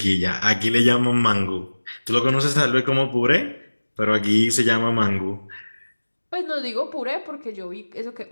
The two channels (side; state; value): both; inverted; correlation -1.00